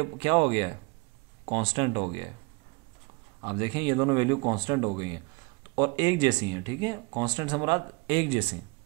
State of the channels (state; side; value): quieter; left; 28.1 dB